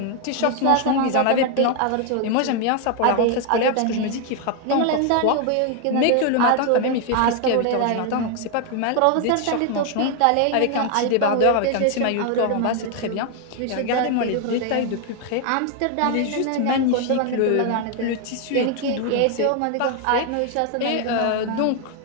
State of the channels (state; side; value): different; both; correlation 0.01